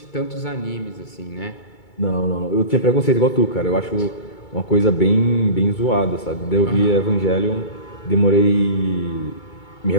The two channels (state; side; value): late; right; 2.3 ms